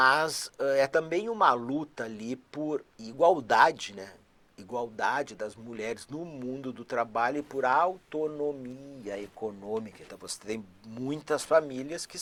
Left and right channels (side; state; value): both; identical; correlation 1.00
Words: é também uma luta ali por igualdade, né? Igualdade das mulheres no mundo do trabalho e por autonomia econômica. Então você tem muitas famílias que